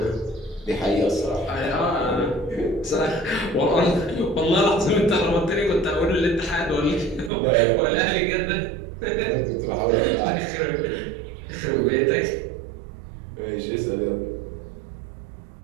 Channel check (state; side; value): drops out; left; at 7.3 s